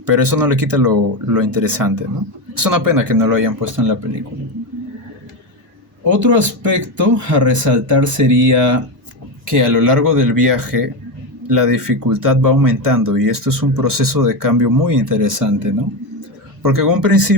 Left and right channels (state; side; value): normal; both; correlation 0.14